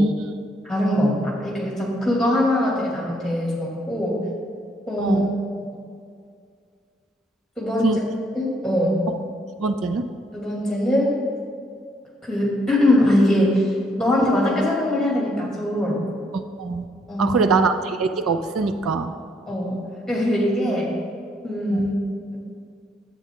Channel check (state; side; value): normal; both; correlation 0.71